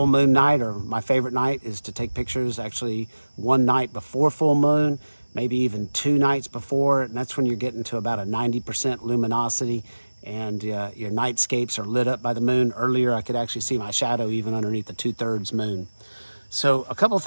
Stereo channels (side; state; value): both; inverted; correlation -1.00